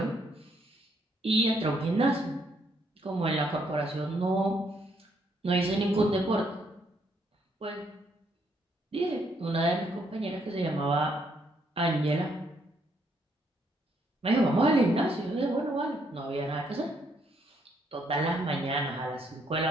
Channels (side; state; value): both; normal; correlation 0.72